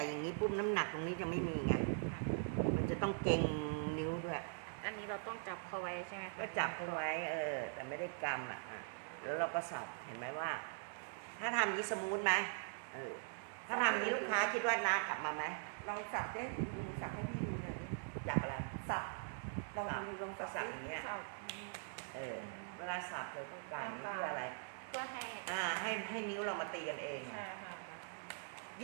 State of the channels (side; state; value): left; silent; digital silence